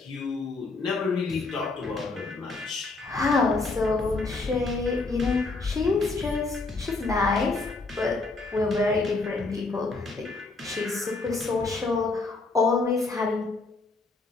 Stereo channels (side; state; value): right; quieter; 3.6 dB